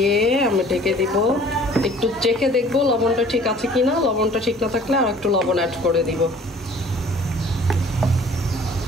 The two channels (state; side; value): normal; both; correlation 0.51